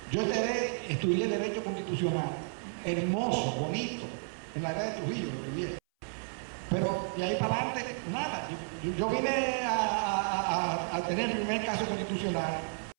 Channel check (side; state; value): left; silent; 56 dB below the other